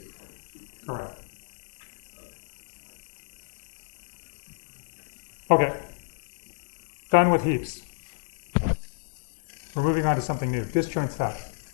order. Correct. Okay. Done with heaps. We're moving on to something new. Disjoint set.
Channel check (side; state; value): right; silent; digital silence